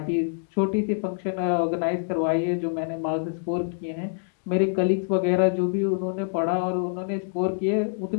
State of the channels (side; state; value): right; silent; digital silence